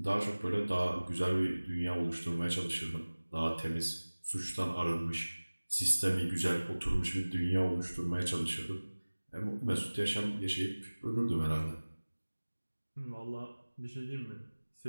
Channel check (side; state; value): both; inverted; correlation -1.00